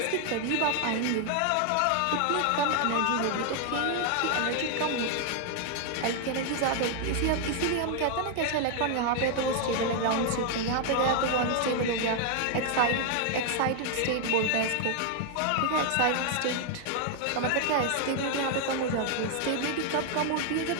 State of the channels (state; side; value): different; both; correlation 0.00